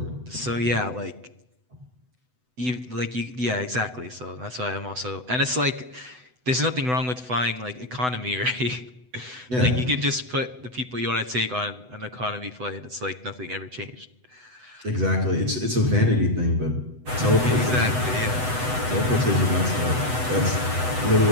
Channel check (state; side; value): late; left; 8.0 ms